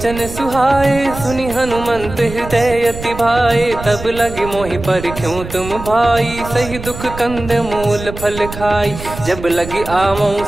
सुहाए, सुनि हनुमंत हृदय अति भाए। तब लगे मोहि परख्यूं तुम भाई, सही दुख कंद मूल फल खाई। जब लगी आवऊं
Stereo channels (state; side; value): noise; right; rumble, 11 dB below the sound